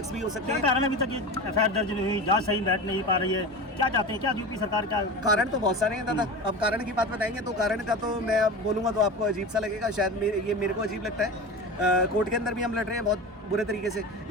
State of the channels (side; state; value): both; normal; correlation 0.29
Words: भी हो सकते हैं। कारण अभी तक ये एफआईआर दर्ज नहीं हुई, जांच सही बैठ नहीं पा रही है, क्या चाहते हैं, क्या यूपी सरकार क्या? कारण तो बहुत सारे हैं दादा, अब कारण की बात बताएंगे तो कारण का तो मैं अब बोलूँगा तो आपको अजीब सा लगेगा, शायद ये मेरे को अजीब लगता है। कोर्ट के अंदर भी हम लड़ रहे हैं बहुत बुरे तरीके से,